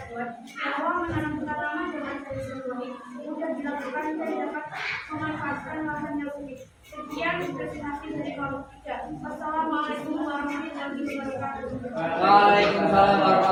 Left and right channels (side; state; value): both; identical; correlation 1.00